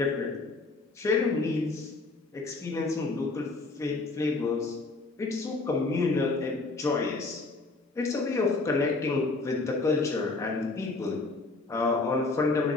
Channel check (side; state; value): right; quieter; 3.5 dB